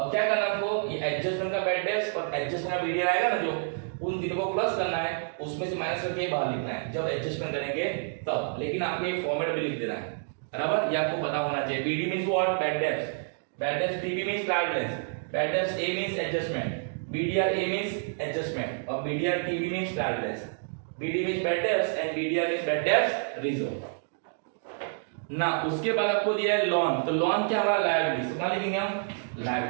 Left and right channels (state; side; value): silent; left; digital silence